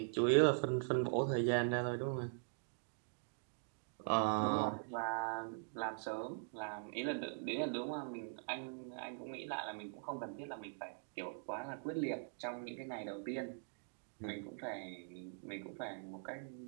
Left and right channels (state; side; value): silent; left; digital silence